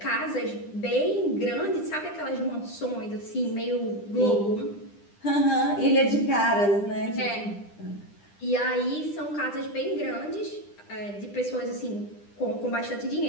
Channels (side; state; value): right; late; 9.9 ms